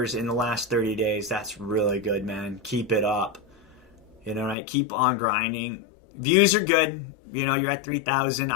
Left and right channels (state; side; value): drops out; right; at 4.5 s